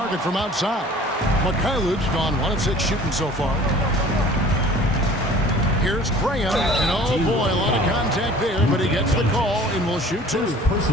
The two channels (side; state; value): both; normal; correlation 0.48